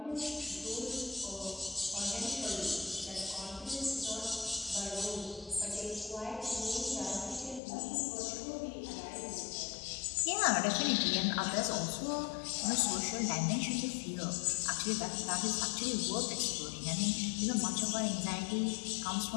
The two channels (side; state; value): right; drops out; at 7.6 s